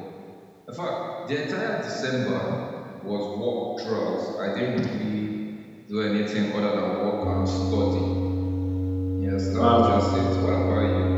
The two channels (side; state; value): both; identical; correlation 1.00